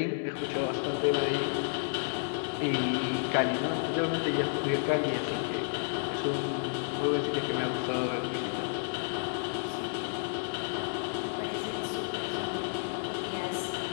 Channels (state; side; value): silent; right; digital silence